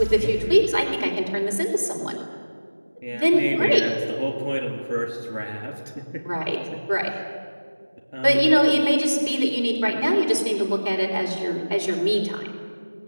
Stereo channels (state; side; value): inverted; both; correlation -1.00